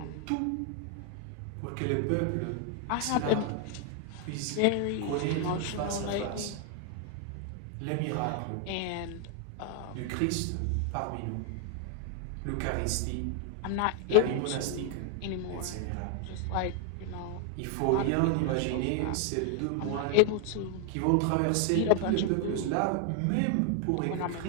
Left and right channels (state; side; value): different; both; correlation 0.00